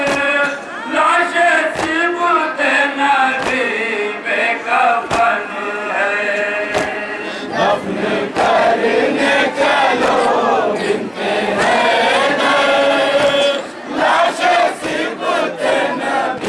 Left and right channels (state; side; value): identical; both; correlation 1.00